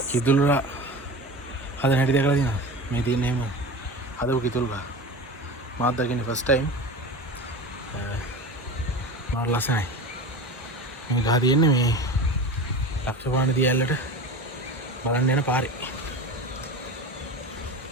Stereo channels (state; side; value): normal; both; correlation 0.30